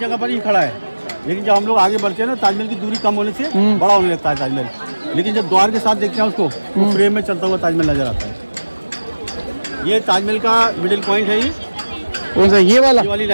पर ही खड़ा है। लेकिन जब हम लोग आगे बढ़ते हैं ना, ताजमहल की दूरी कम होने से बड़ा होने लगता है ताजमहल। लेकिन जब द्वार के साथ देखते हैं उसको, तो फ्रेम में चलता हुआ ताजमहल नजर आता है। ये ताजमहल का मिडिल पॉइंट है। ये कौन सा? ये वाली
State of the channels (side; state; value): both; inverted; correlation -1.00